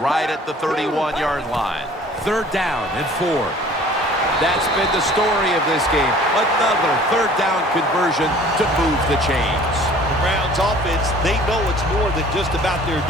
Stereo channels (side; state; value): both; normal; correlation 0.50